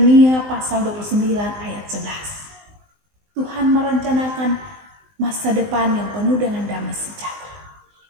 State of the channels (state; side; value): late; left; 19 ms